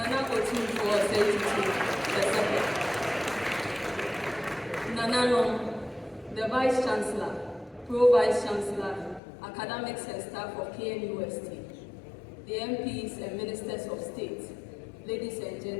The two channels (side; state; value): right; drops out; at 9.2 s